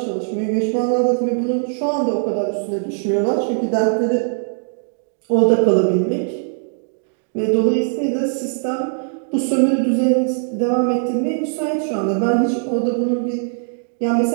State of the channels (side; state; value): left; silent; digital silence